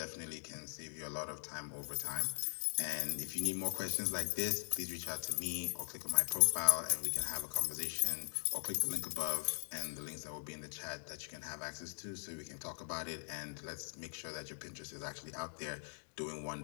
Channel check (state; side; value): silent; right; digital silence